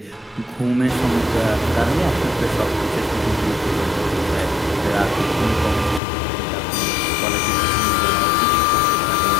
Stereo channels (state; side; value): drops out; right; at 6.0 s